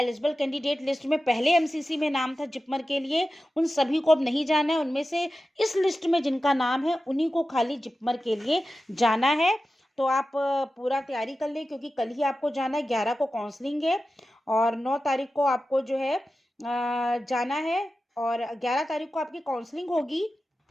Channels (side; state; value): both; normal; correlation 0.93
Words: कैंडिडेट लिस्ट में पहले MCC में नाम था जिपमर के लिए, उन सभी को अब नहीं जाना है। उनमें से इस लिस्ट में जिनका नाम है उन्हीं को खाली जिपमर के लिए जाना है। तो आप पूरा तैयारी कर लें, क्योंकि कल ही आपको जाना है, 11 को काउंसलिंग है और 9 तारीख को आपको जो है जाना है, और 11 तारीख को आपकी काउंसलिंग होगी।